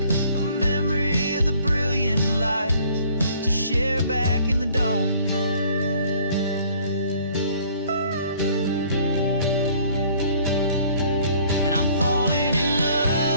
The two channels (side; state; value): both; inverted; correlation -0.57